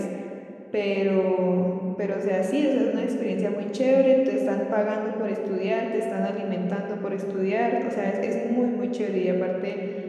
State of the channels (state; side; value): identical; both; correlation 1.00